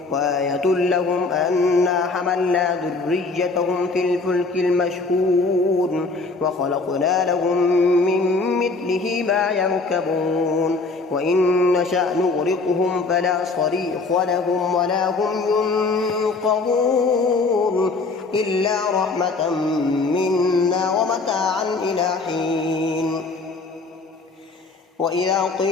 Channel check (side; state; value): right; quieter; 3.8 dB